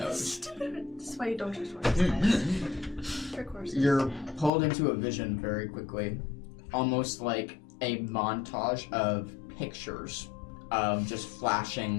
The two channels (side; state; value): right; drops out; at 4.5 s